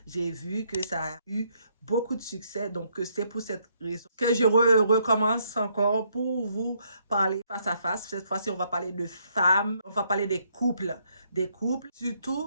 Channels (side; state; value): both; inverted; correlation -0.72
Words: j'ai vu que ça a eu beaucoup de succès. Donc, c'est pour cette raison que je recommence encore pour vous parler face à face. Cette fois-ci, on va parler de femmes, on va parler des couples,